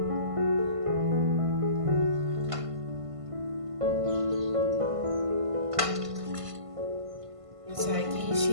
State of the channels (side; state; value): left; late; 1.5 ms